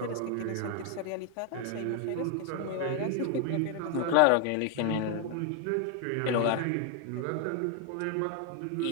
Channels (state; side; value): different; both; correlation 0.00